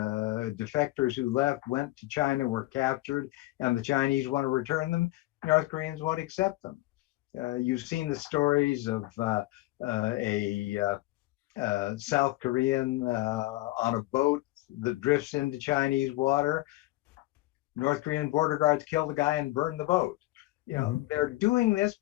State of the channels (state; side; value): quieter; right; 19.0 dB